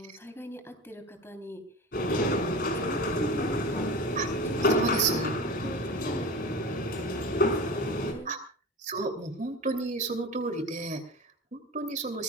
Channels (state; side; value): normal; both; correlation 0.31